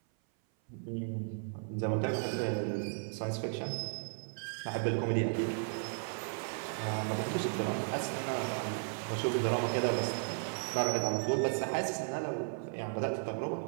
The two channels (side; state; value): left; silent; 54 dB below the other